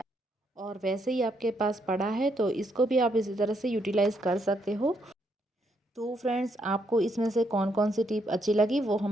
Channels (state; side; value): normal; both; correlation 0.75